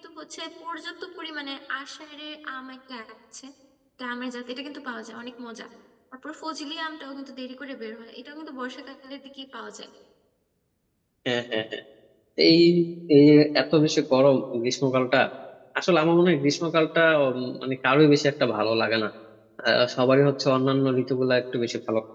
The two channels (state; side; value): identical; both; correlation 1.00